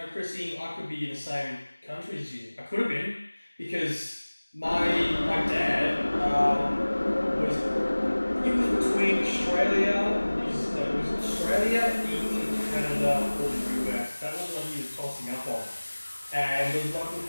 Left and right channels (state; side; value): inverted; both; correlation -1.00